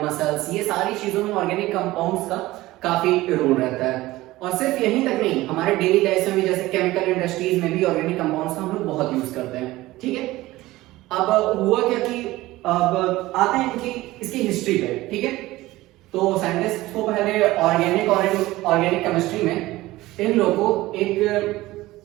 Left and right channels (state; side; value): quieter; left; 17.9 dB